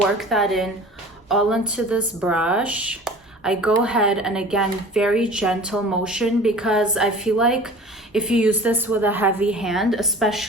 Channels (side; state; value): both; normal; correlation 0.43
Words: that in all into this brush, I go ahead and, again, very gentle motion, because I feel like if you use this with a heavy hand,